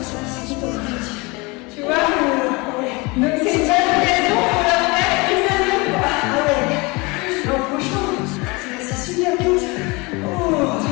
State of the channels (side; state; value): right; quieter; 26.2 dB